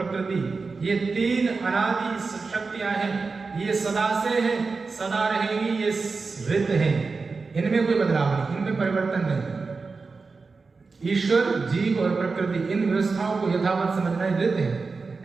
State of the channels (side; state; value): left; quieter; 4.3 dB